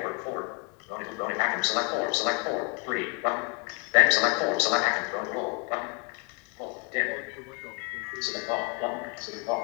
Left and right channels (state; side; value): quieter; right; 32.3 dB